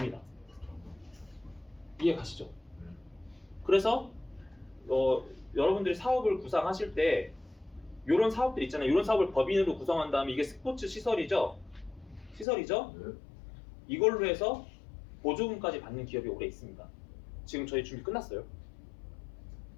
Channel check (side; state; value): right; drops out; at 12.5 s